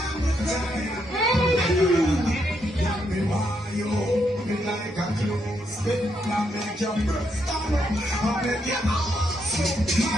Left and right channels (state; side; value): normal; both; correlation 0.78